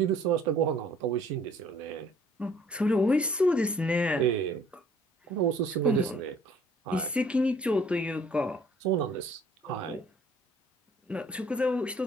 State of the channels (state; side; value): normal; both; correlation 0.57